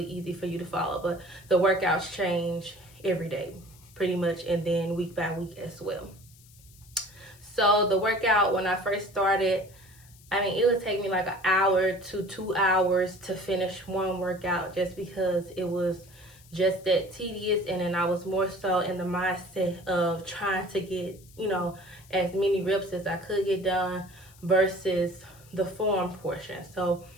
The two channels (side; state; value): left; noise; hiss, 25 dB below the sound